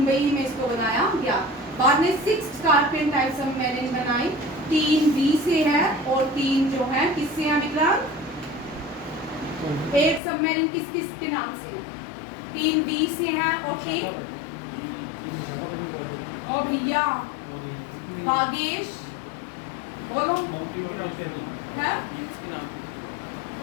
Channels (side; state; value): right; drops out; at 10.2 s